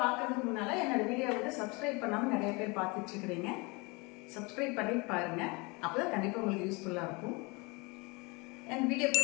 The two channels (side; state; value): right; quieter; 27.7 dB